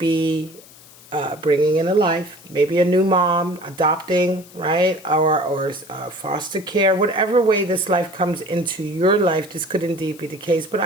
bringing in a life, maybe a new mom, adopting, right? Or foster care, whatever way this life comes into your life, this could indeed be the case. But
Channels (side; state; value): left; noise; hiss, 22 dB below the sound